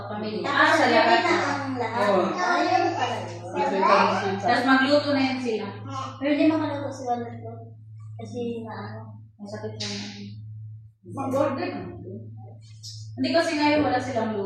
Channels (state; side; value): identical; both; correlation 1.00